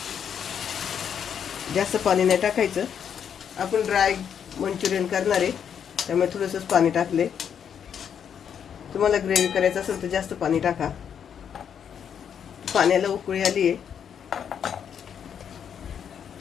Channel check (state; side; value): quieter; right; 8.1 dB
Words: जास्त पाणी नाही टाकायचं. आपण ड्राय मंचुरियन करणार आहे, त्यामुळे थोडंसंच पाणी टाकले. तुम्हाला ग्रेव्ही करायचं असेल तर जास्त पाणी टाका. पाण्याला उकळी आली आहे.